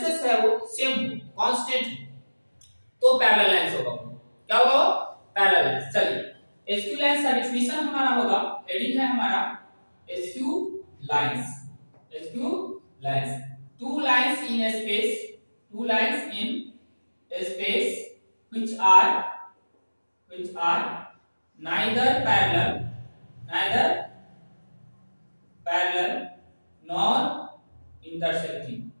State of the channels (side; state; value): both; inverted; correlation -1.00